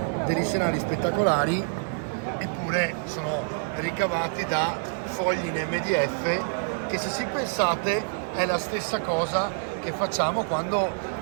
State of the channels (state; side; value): silent; left; digital silence